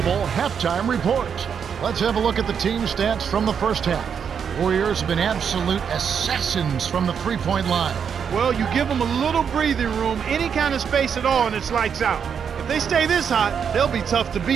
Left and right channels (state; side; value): quieter; left; 7.2 dB